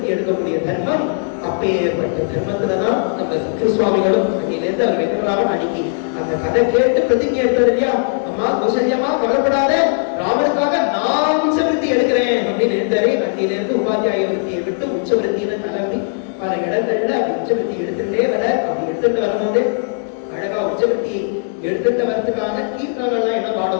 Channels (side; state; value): right; silent; digital silence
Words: எடுக்கக்கூடிய தர்மம். அப்பேற்பட்ட தர்மத்துலதான் நம்ம சத்ரு சுவாமிகளும் அன்னிலிருந்து அவர் வெங்கடராமன் அன்னைக்கு அந்த கதை கேட்டு பிரதிஜை எடுத்தது இல்லையா, அம்மா கௌசல்யமா கவலைப்படாத, ராமனுக்காக நான் உச்சவருத்தி எடுக்கிறேன் அப்படின்னு எடுத்தாரு. அன்னிலிருந்து உபாத்தியாய விருத்தியை விட்டு உச்சவருத்தின்னு கிளம்பி பல இடங்கள்ல அப்படி உச்சவருத்தி எடுத்துட்டே வர. அப்படி எடுத்துட்டு வரும்போது அழகா உச்சவருத்தி எடுத்துட்டு வரதுக்கான கீர்த்தனங்கள்லாம் என்ன